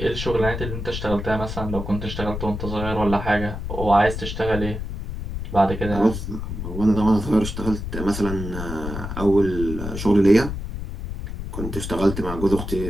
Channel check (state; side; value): noise; left; rumble, 6 dB below the sound